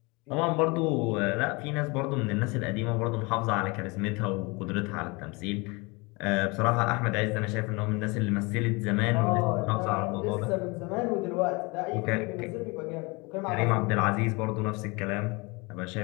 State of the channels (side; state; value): right; quieter; 27.0 dB